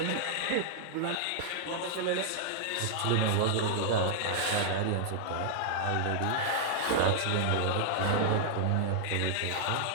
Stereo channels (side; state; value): both; different; correlation -0.01